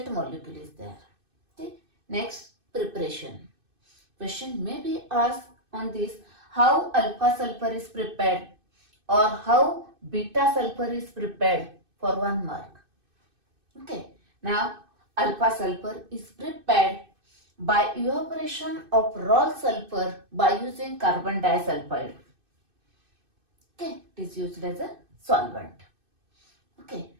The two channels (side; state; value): left; late; 2.6 ms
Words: molecule is there. Okay. Next, preparation. Question may be asked on this, how alpha sulfur is prepared or how beta sulfur is prepared, for 1 mark. Okay. Now alpha sulfur is prepared by evaporation of raw sulfur by using carbon disulfide. Okay, it is used as a solvent. Okay,